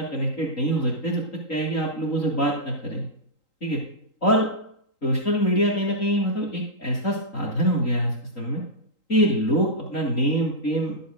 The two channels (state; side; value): late; right; 3.8 ms